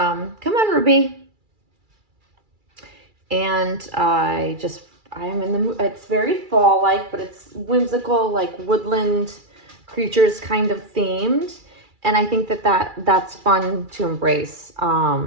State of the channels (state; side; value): late; left; 2.3 ms